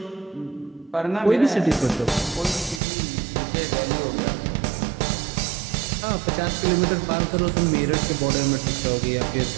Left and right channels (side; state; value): left; drops out; at 2.8 s